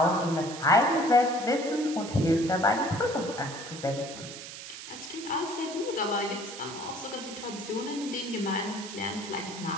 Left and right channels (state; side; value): noise; right; hiss, 11 dB below the sound